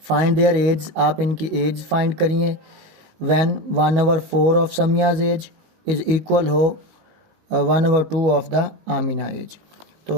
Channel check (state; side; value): late; left; 19 ms